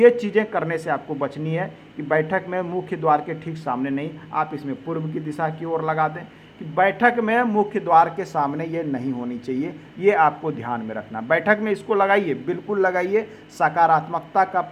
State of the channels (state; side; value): identical; both; correlation 1.00